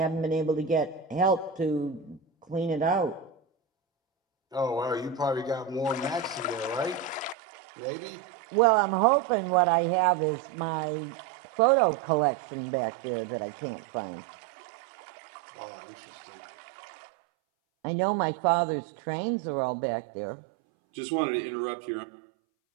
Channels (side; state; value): left; drops out; at 7.4 s